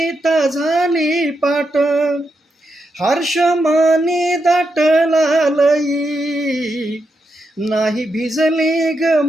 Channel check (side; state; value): both; normal; correlation 0.84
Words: झाली पाट. हर्षमाने दाटला लई, नाही भिजली ग